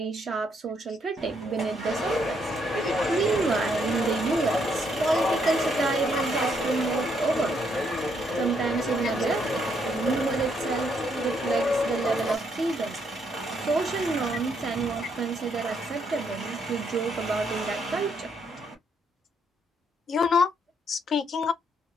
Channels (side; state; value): both; normal; correlation 0.73